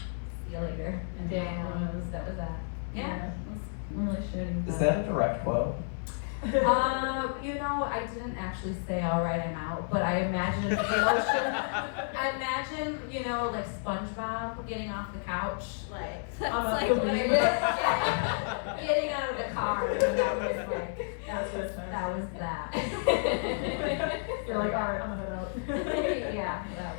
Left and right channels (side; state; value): right; silent; 56 dB below the other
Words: you later. And that was that. Yeah, it was really shitty. Is that a direct quote? I didn't actually say all right, I'm out, but I imagine the emotion. I imagine, like SpongeBob getting off the couch, that's like what it is. Yeah. Getting out of the car. And that was that. You're like, all right, I'm gonna go. Yeah,